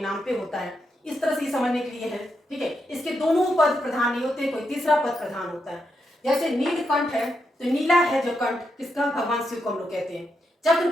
पे होता है, इस तरह से समझने के लिए है, ठीक है। इसके दोनों पद प्रधान नहीं होते, कोई तीसरा पद प्रधान होता है। जैसे नीलकंठ है तो नीला है जो कंठ किसका, भगवान शिव को हम लोग कहते हैं।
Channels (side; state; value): both; normal; correlation 0.83